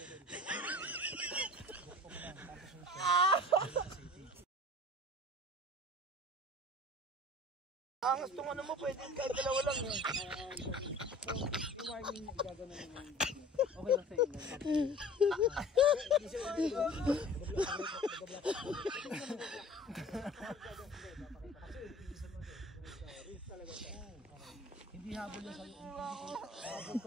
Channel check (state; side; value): normal; both; correlation 0.44